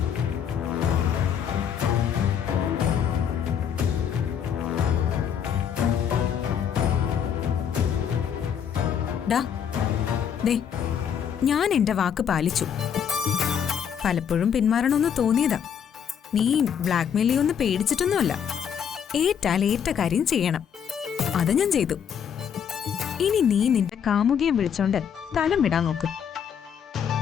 ഞാൻ എന്റെ വാക്ക് പാലിച്ചു. പലപ്പോഴും പിന്മാറണമെന്ന് തോന്നിയതാ. നീ ബ്ലാക്ക് മെയിൽ ഒന്ന് പേടിച്ചിട്ടൊന്നുമല്ല. ഏറ്റാൽ ഏറ്റ കാര്യം ചെയ്യണം. അത് ഞാൻ ചെയ്തു. ഇനി നീ നിന്റെ കാമുകിയെ വിളിച്ചോണ്ട് സ്ഥലം വിടാൻ നോക്ക്.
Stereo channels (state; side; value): quieter; right; 8.1 dB